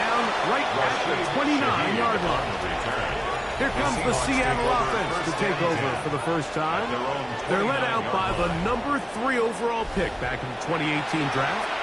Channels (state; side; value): identical; both; correlation 1.00